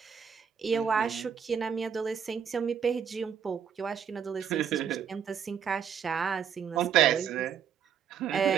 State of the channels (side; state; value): left; quieter; 7.7 dB